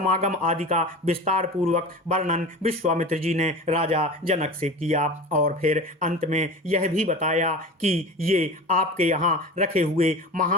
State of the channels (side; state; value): both; normal; correlation 0.33